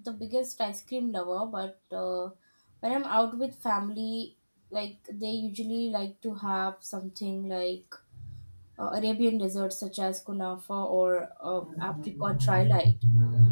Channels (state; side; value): inverted; both; correlation -1.00